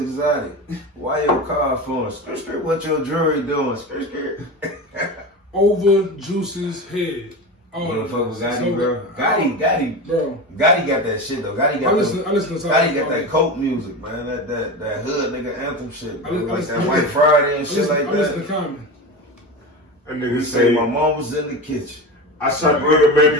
exotic? Why your car flowing? Skirt, skirt. What your jewelry doing? Skirt, skirt. Over Juice's head. Oh, motherfucker with Gotti, bro. Gotti, bro. Gotti got that shit though. Gotti got Gotti got that coke music, man. That hood nigga anthem shit, bro. Like that White Friday and shit like that. Listen to Common. That nigga say my mom was in the kitchen. I shot a nigga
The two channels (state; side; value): normal; both; correlation 0.25